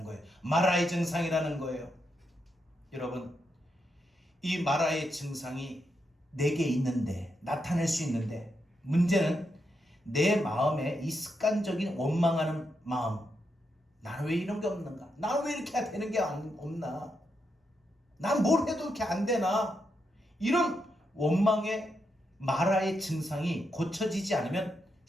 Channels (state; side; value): normal; both; correlation 0.83